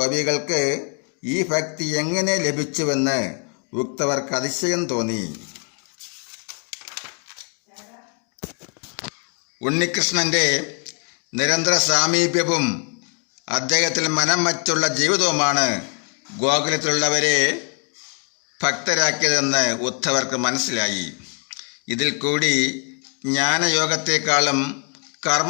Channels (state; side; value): quieter; right; 39.6 dB